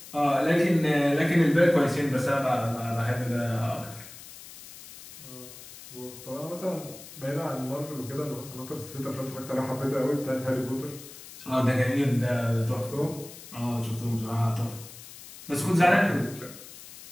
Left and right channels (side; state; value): left; noise; hiss, 16 dB below the sound